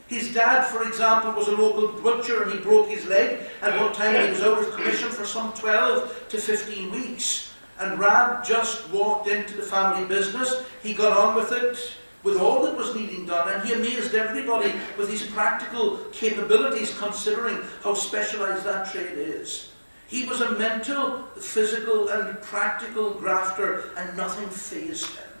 His dad, for example, was a local butcher, and he broke his leg at one time, and he was out of commission for some 12 to 15 weeks. And Rab just walked into the family business. He got on with it, with all that was needing done, and he amazed everybody with his practical capabilities, considering how specialized that trade is. He was a mental, physical, and practical grafter, and nothing fazed him.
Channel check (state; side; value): inverted; both; correlation -1.00